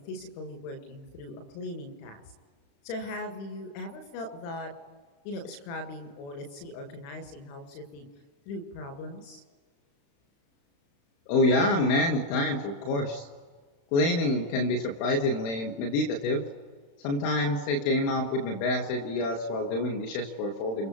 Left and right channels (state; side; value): late; right; 35 ms